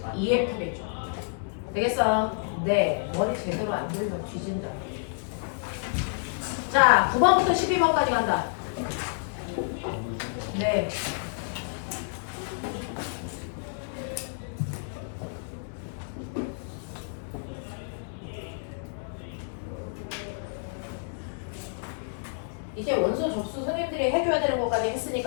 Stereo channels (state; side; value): silent; right; 59 dB below the other